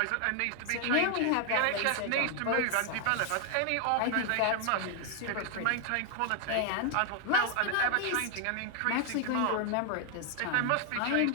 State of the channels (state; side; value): different; both; correlation 0.00